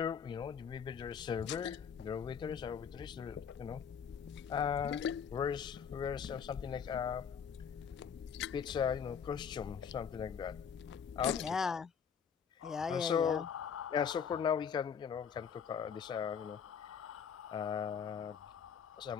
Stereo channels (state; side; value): quieter; right; 7.2 dB